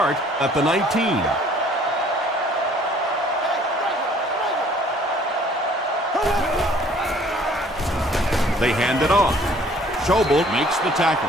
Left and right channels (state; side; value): normal; both; correlation 0.56